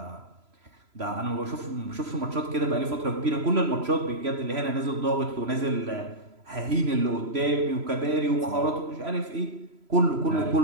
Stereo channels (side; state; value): left; late; 3.0 ms